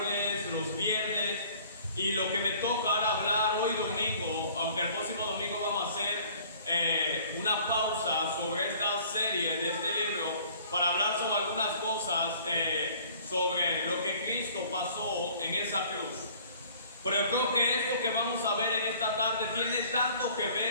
los viernes, y lo que me toca ahora hablar hoy domingo, aunque el próximo domingo vamos a hacer una pausa sobre esta serie de este libro para hablar sobre algunas cosas sobre lo que Cristo pasó en esa cruz. Pero yo creo que esto que vamos a ver en esta tarde tiene tanto que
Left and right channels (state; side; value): inverted; both; correlation -0.53